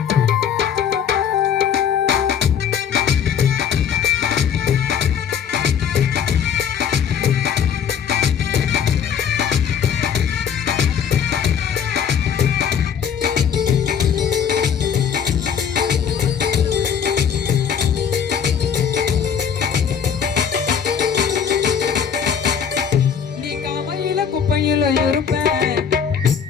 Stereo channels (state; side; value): quieter; right; 7.8 dB